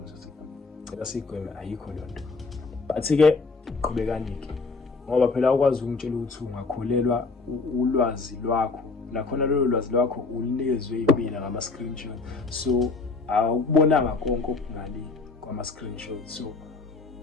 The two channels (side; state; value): right; quieter; 4.1 dB